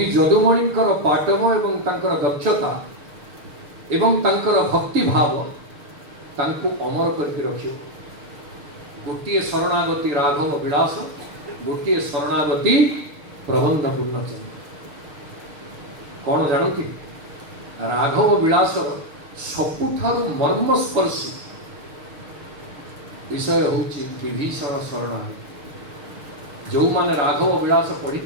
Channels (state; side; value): late; left; 6.6 ms